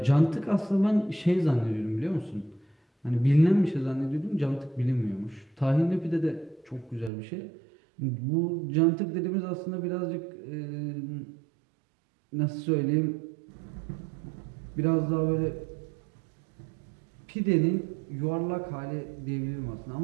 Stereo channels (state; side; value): drops out; left; at 7.1 s